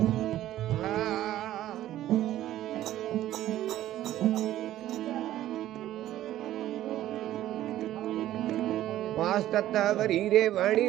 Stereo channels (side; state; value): left; quieter; 13.5 dB